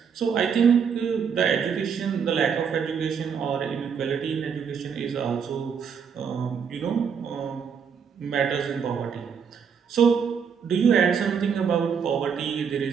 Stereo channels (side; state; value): left; quieter; 6.8 dB